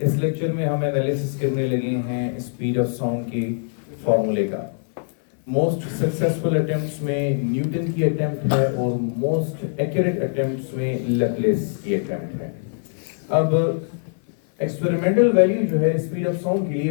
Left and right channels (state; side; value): silent; right; 58 dB below the other